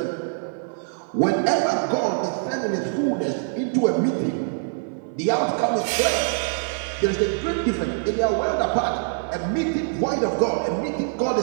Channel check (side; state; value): left; silent; 56 dB below the other